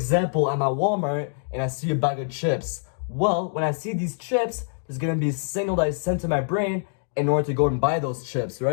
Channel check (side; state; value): right; silent; digital silence